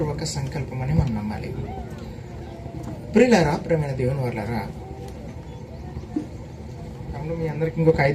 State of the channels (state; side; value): identical; both; correlation 1.00